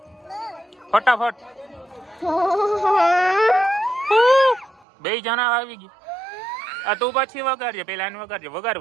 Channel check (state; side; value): drops out; left; at 4.9 s